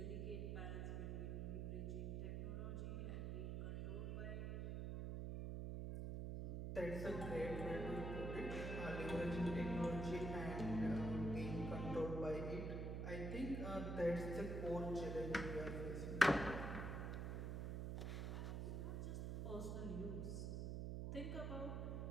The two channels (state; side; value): noise; right; hum, 2 dB below the sound